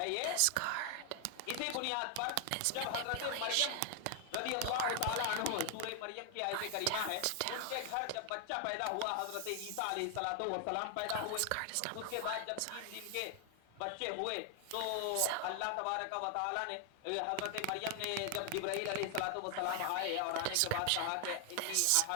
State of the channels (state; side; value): different; both; correlation 0.00